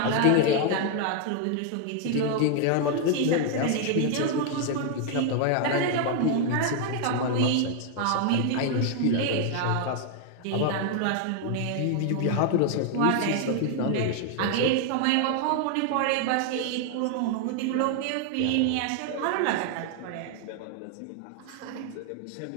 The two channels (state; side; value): different; both; correlation 0.00